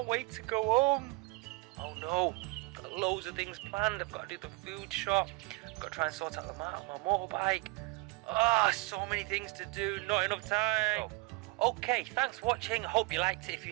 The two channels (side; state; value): left; quieter; 25.5 dB